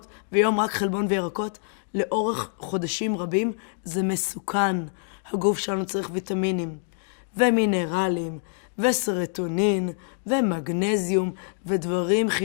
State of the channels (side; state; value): right; silent; digital silence